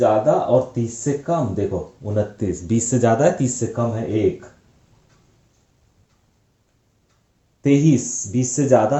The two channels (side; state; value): both; identical; correlation 1.00